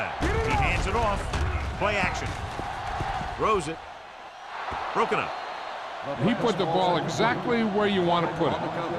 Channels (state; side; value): identical; both; correlation 1.00